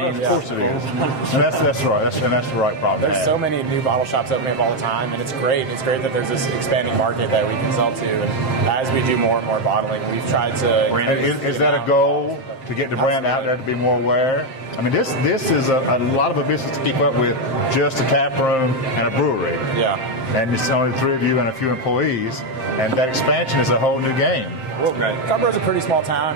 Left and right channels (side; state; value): right; late; 7.6 ms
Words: course it is. And that's right. That's the right problem. There's so many new bottle shops opening up all the time, and it's great. It's great that there's this expanding market that we can sell to. And as we do more and more bottling, we've tried to. Is that a goal to get the brand out there to be more aware? I mean, this is a lot of a business to keep up with, just a tap room and a brewery. Yeah. And it's only the three of you and a few employees, and that expansion is a whole new game. Well, Carrboro's a pretty small town,